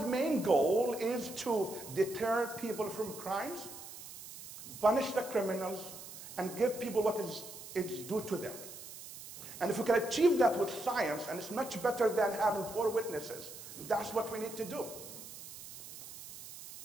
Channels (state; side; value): noise; right; hiss, 13 dB below the sound